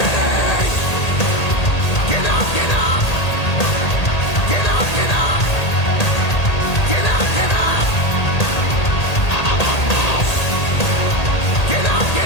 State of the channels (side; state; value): right; late; 1.8 ms